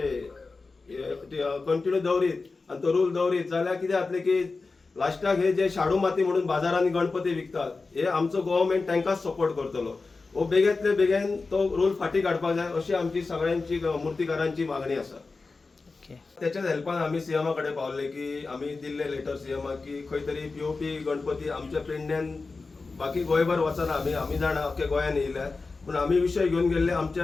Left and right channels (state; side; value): quieter; right; 4.0 dB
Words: कंटिन्यू दवरीत आनी तो रूल दवरीत जाल्यार कितें जातलें की लास्टाक हे जे शाडू माती म्हणून बाजारांनी गणपती विकतात हे आमचो गव्हर्मेंट तांकांच सपोर्ट करतलो। वो बेगेंतले बेगीन तो रूल फाटी काडपाक जाय अशी आमची सगळ्यांची मुर्तीकारांची मागणी आसा। त्याच्याच हेल्पान आमी सीएमा कडेन पावले की आमी दिल्ले लेटर सीएमाक की खंय तरी POP गणपती आमच्या पेडण्यान बाकी गोंयभर वचना, आमी जाणा अख्ख्या गोंयान येयल्या, पूण आमी विशय घेवन गेल्ले